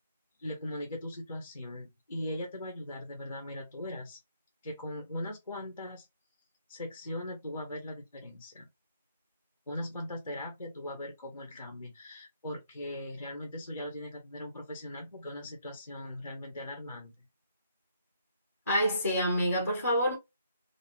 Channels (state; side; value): inverted; both; correlation -0.68